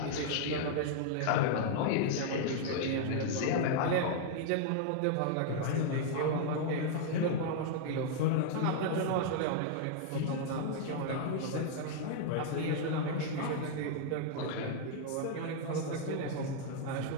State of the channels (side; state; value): both; different; correlation 0.00